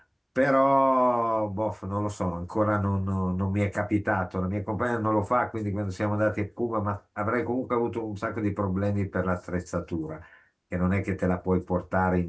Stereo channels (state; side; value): identical; both; correlation 1.00